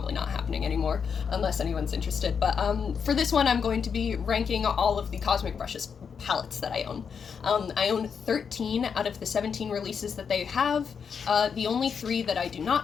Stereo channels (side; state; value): right; quieter; 6.6 dB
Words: not happening anymore, unless anyone's interested, but for this one I'm going to be ranking all of the Cosmic Brushes palettes that I own. I own 13 out of the 17 releases that they have. The only 3 that I do